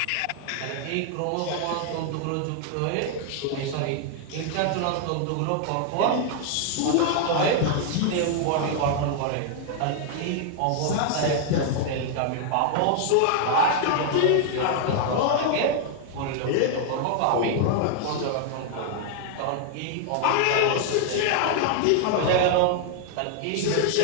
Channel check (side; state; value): both; different; correlation 0.00